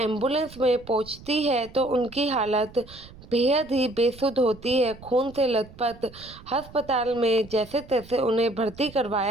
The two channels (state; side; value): noise; right; rumble, 20 dB below the sound